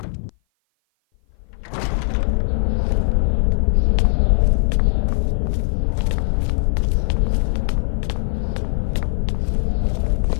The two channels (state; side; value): silent; right; 56 dB below the other